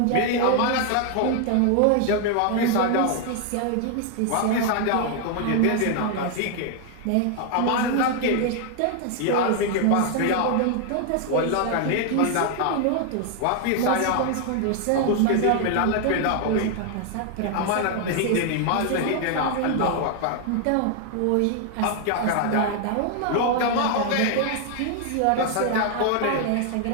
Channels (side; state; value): both; different; correlation 0.00